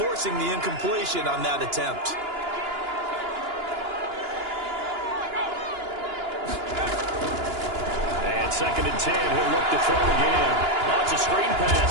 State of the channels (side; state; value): left; late; 2.9 ms